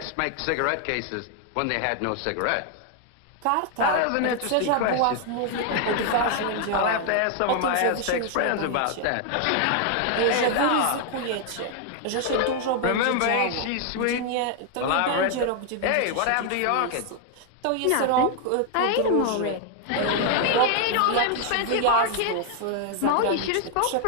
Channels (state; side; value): different; both; correlation 0.00